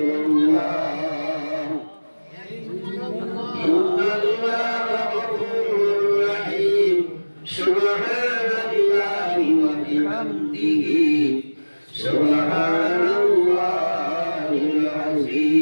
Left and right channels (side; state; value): both; inverted; correlation -1.00